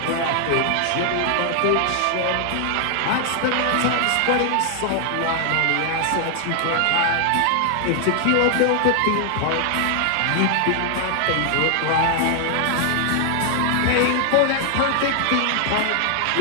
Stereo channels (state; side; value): different; both; correlation 0.00